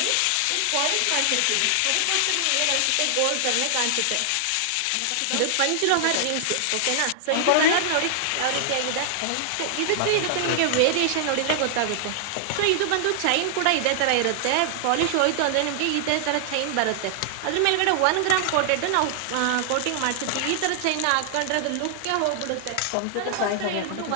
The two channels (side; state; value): both; different; correlation 0.00